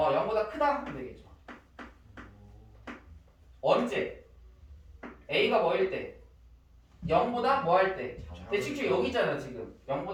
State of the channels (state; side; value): identical; both; correlation 1.00